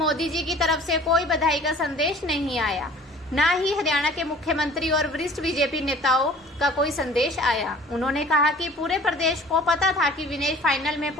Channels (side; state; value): both; normal; correlation 0.48